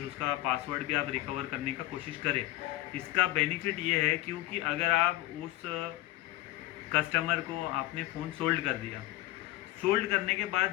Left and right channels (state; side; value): quieter; right; 17.1 dB